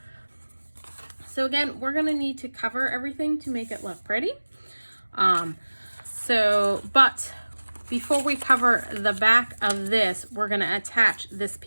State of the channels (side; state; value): both; inverted; correlation -1.00